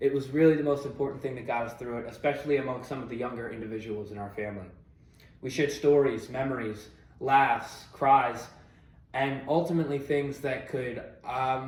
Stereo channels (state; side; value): identical; both; correlation 1.00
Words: was really the most important thing that got us through it, especially among some of the younger individuals in our family. We shared stories, memories, laughs, cries, and ultimately things that could